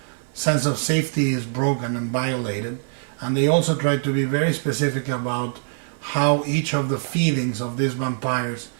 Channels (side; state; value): left; silent; 58 dB below the other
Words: sense of safety is broken and violated. And they also try to be very specific about how each of the feelings of these vampires